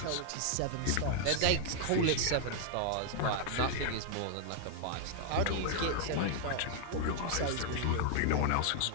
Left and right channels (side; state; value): both; different; correlation -0.01